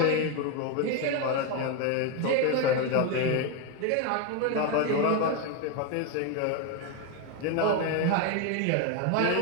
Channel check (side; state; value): both; different; correlation 0.02